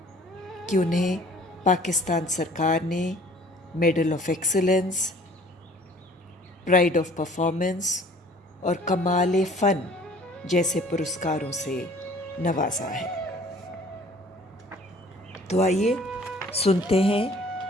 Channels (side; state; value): both; normal; correlation 0.52